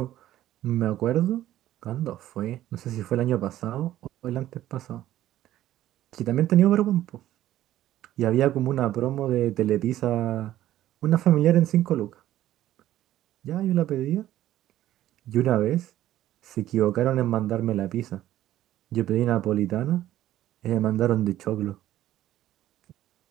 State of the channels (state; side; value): quieter; left; 13.4 dB